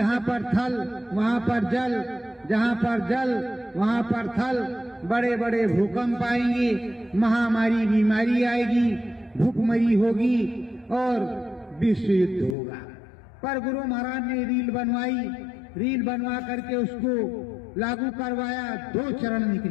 पर थल वहां पर जल, जहां पर जल वहां पर थल, बड़े बड़े भूकंप आएंगे, महामारी बीमारी आएगी, भूखमरी होगी और विश्व युद्ध होगा। पर गुरु महाराज ने रील बनवाई, रील बनवा करके उसको लागू करवाया। 2 चरण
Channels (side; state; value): right; drops out; at 12.6 s